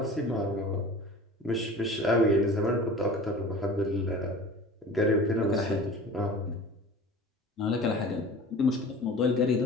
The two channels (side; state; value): both; normal; correlation 0.40